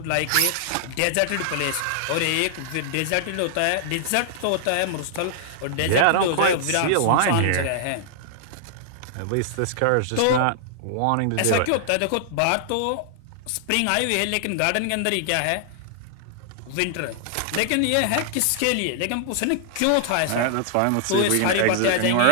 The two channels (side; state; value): both; different; correlation -0.01